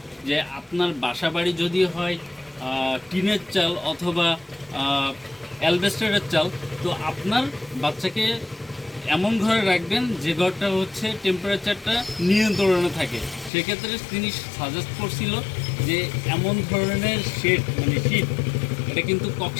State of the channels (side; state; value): right; drops out; at 13.5 s